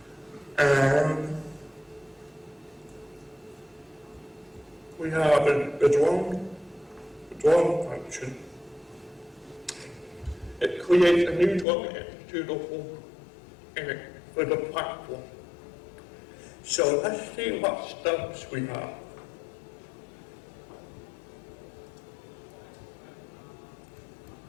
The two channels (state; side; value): drops out; right; at 11.7 s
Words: And we have the drone function. It creates a new drone executable for the platform. So let's see what stubs we have.